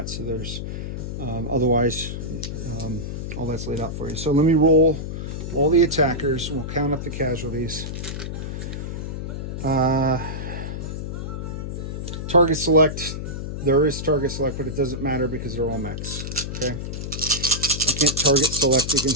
So there's otherwise all that's laid out for you. So let me roll all the attackers. We'll count up the casualties. Target select. There is target select, but it doesn't matter because they're all mechs. Okay, I can't target select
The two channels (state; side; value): noise; left; hum, 5 dB below the sound